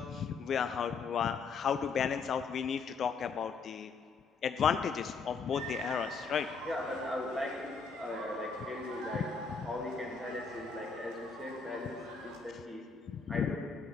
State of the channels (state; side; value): quieter; right; 5.1 dB